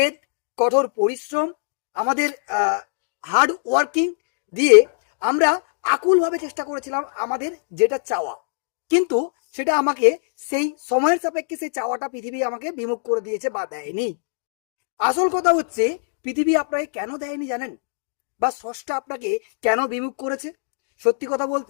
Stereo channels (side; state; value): right; silent; digital silence